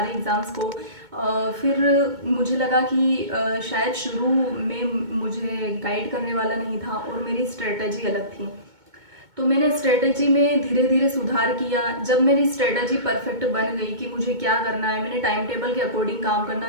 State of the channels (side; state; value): left; late; 2.2 ms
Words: एग्ज़ाम्स को फिर मुझे लगा कि शायद शुरू में मुझे गाइड करने वाला नहीं था और मेरी स्ट्रेटजी अलग थी। तो मैंने स्ट्रेटजी में धीरे धीरे सुधार किया। जब मेरी स्ट्रेटजी परफेक्ट बन गई कि मुझे क्या करना है, मैंने टाइम टेबल के अकॉर्डिंग काम करना